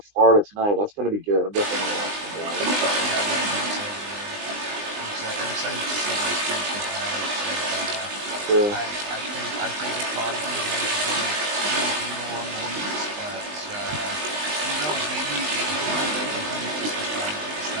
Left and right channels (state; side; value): late; left; 20 ms